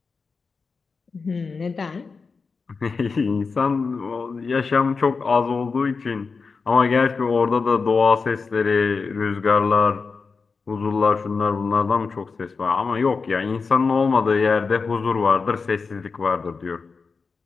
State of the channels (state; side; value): quieter; right; 4.7 dB